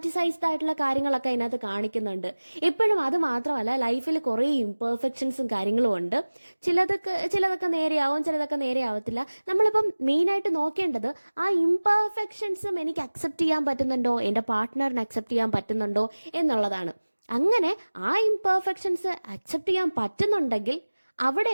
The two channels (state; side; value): inverted; both; correlation -1.00